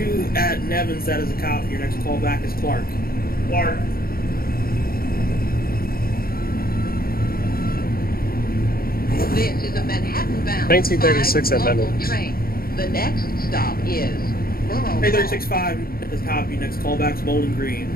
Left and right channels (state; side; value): late; right; 0.43 ms